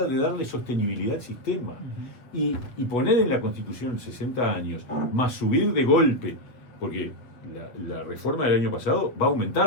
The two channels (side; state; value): right; late; 7.8 ms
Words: de darle sostenibilidad al sistema. Y poner en la Constitución 60 años, más subir de golpe, porque la reforma del año pasado va a